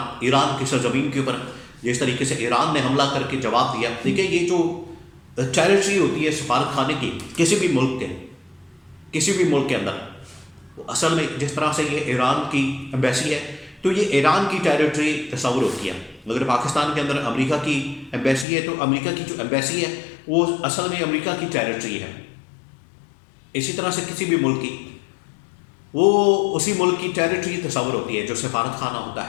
ایران کی سرزمین کے اوپر، جس طریقے سے ایران نے حملہ کر کے جواب دیا۔ دیکھیں، یہ جو ٹیریٹری ہوتی ہے سفارت خانے کی کسی بھی ملک کے اندر، وہ اصل میں جس طرح سے یہ ایران کی ایمبیسی ہے، تو یہ ایران کی ٹیریٹری تصور ہوتی ہے۔ اگر پاکستان کے اندر امریکہ کی ایمبیسی ہے تو امریکہ کی جو ایمبیسی ہے وہ اصل میں امریکہ کی ٹیریٹری ہے۔ اسی طرح سے کسی بھی ملک کی وہ اسی ملک کی ٹیریٹری تصور ہوتی ہے جو سفارت خانہ ہوتا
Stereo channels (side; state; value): right; drops out; at 18.4 s